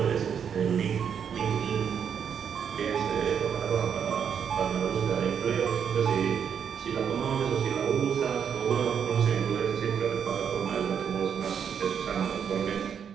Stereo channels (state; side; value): quieter; left; 7.7 dB